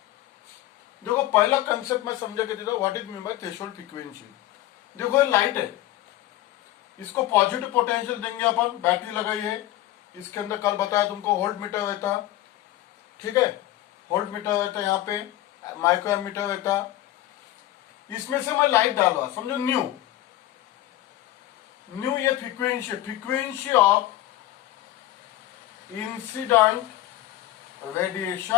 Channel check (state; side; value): quieter; right; 14.9 dB